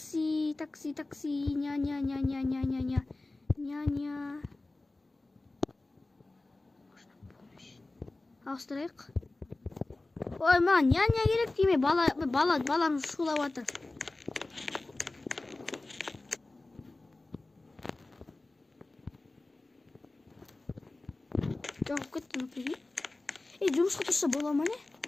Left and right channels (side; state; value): right; quieter; 3.0 dB